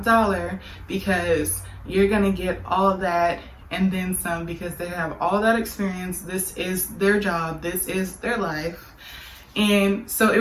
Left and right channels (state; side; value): identical; both; correlation 1.00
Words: dollar because you're gonna get all that and then some because they have all that experience. This is their job, this is their life. And so